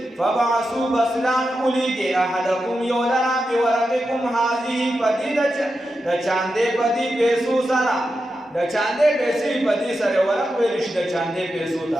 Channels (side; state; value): both; normal; correlation 0.89